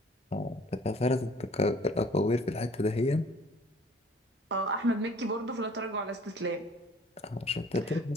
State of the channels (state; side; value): normal; both; correlation 0.53